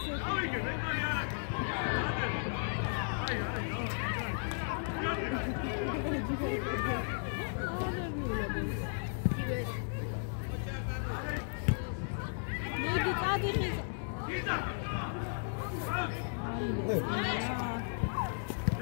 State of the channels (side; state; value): right; silent; digital silence